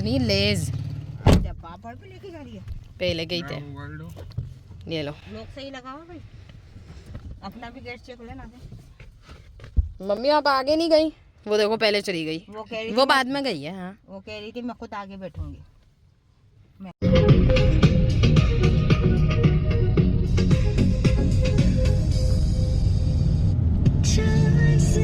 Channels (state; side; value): identical; both; correlation 1.00